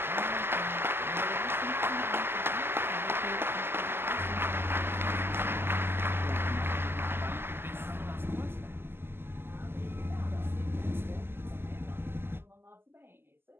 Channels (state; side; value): late; left; 0.11 ms